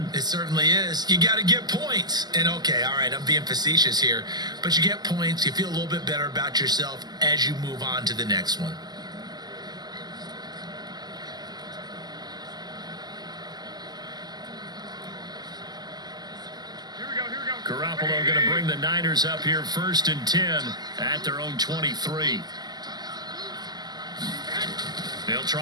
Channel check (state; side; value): late; left; 0.20 ms